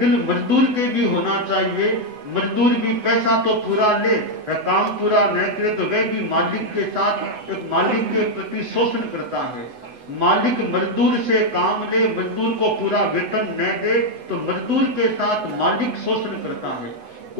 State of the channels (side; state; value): left; late; 8.0 ms